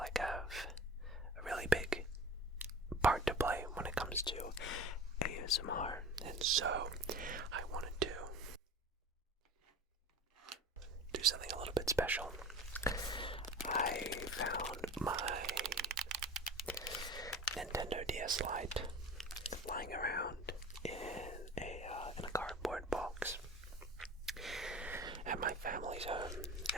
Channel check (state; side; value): normal; both; correlation 0.37